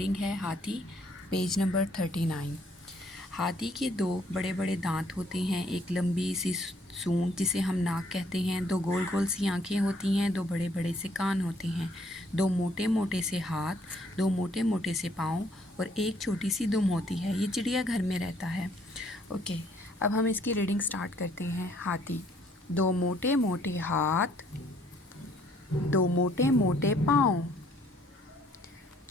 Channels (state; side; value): normal; both; correlation 0.64